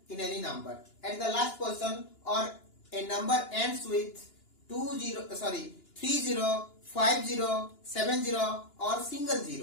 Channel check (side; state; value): right; late; 2.9 ms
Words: in any number at the last position, or a number ends with 30, 50, 70 or single